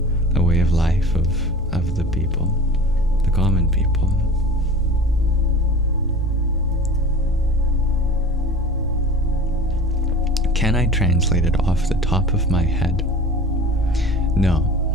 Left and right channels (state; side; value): normal; both; correlation 0.39